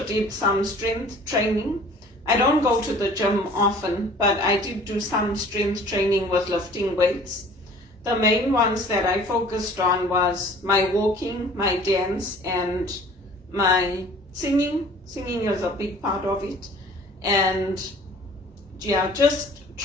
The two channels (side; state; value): both; normal; correlation 0.49